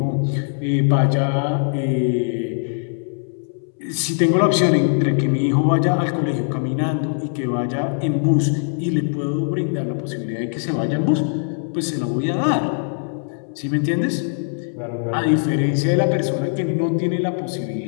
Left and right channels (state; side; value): silent; right; 65 dB below the other